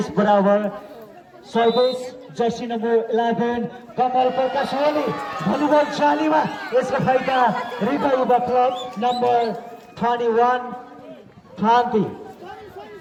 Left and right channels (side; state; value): both; identical; correlation 1.00